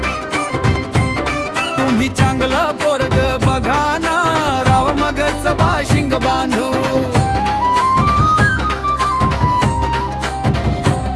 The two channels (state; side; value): identical; both; correlation 1.00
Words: तुम्ही चांगलं पोरग बघा ना, राव मगच बाशिंग बांधू.